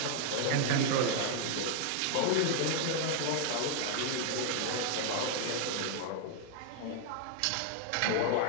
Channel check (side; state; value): both; different; correlation 0.00